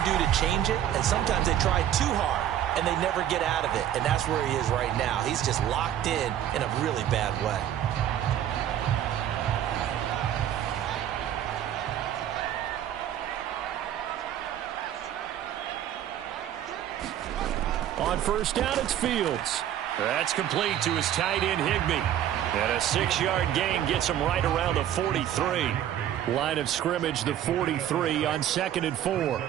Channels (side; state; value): left; quieter; 11.1 dB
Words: do to change it, and sometimes they try too hard, and they never get out of it. And that's where he is right now. He's just locked in a really bad way. On first down, it's Fields. That's complete to his tight end, Higbee. And a 6-yard gain gets him right around the 43. Line of scrimmage, the 43 on 2nd and 4.